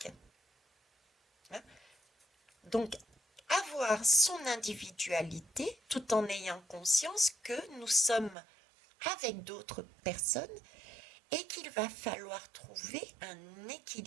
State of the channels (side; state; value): left; drops out; at 8.3 s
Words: Hein. Donc, avoir son individualité tout en ayant conscience que nous sommes avec d'autres personnes et qu'il va falloir trouver un